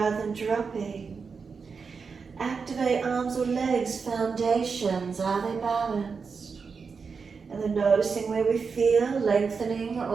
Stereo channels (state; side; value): quieter; left; 5.3 dB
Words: than dropping. Activate arms or legs, foundations, are they balanced? And then noticing where we feel, lengthening,